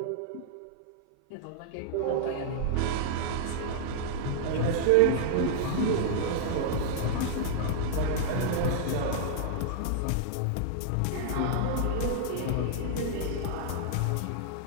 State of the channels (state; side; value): different; both; correlation -0.01